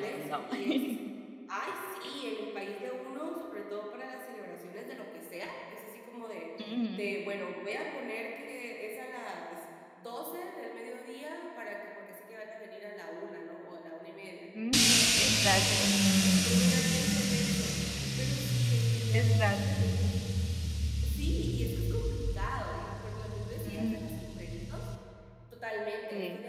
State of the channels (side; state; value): both; identical; correlation 1.00